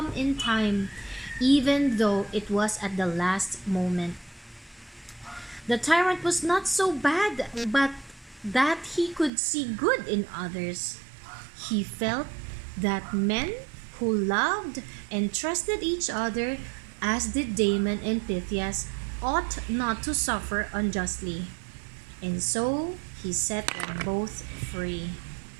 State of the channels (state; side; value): drops out; left; at 9.3 s